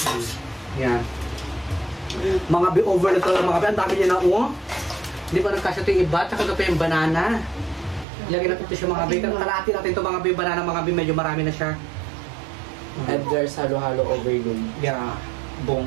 Yan. Mga bi, overload talaga mga bi. Ang dami niya na Hindi pa nagkasya ito yung iba. Tsaka ito pa yung banana. Ilagay natin ito siya mga bi. Kalahati natin ito mga bi. Banana mga bi. Medyo marami na siya. Edgar's halo-halo overload. Yeah.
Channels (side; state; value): left; drops out; at 8.1 s